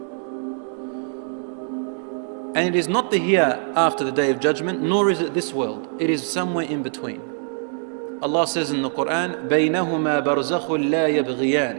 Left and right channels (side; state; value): left; silent; 63 dB below the other